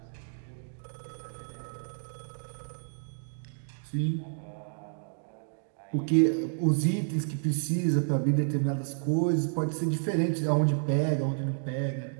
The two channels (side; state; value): left; silent; digital silence